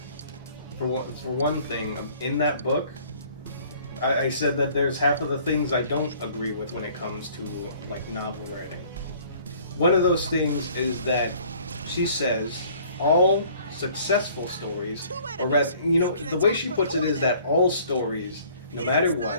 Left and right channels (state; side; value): inverted; both; correlation -0.55